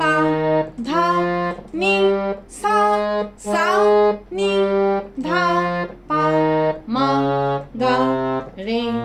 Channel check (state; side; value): identical; both; correlation 1.00